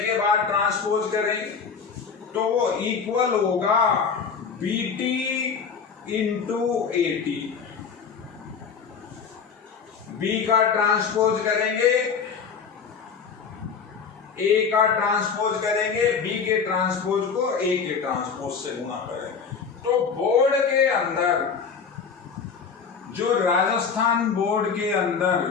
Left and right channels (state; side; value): quieter; right; 6.0 dB